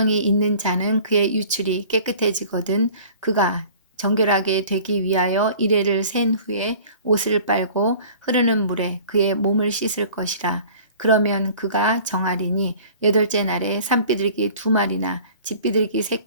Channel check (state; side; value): inverted; both; correlation -0.47